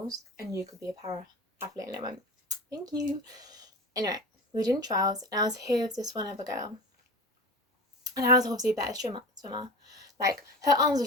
and you could be a para athlete. And I went, thank you. Anyway, we were doing trials, and I was here with this one other girl, and I was obviously a better swimmer. Like, her arms were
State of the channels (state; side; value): normal; both; correlation 0.31